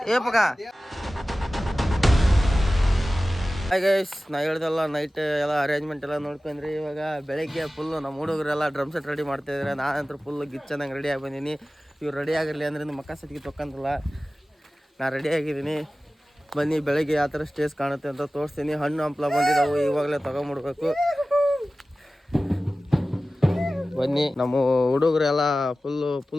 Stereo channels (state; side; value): normal; both; correlation 0.96